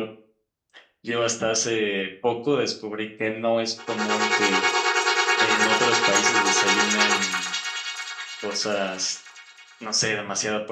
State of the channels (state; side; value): identical; both; correlation 1.00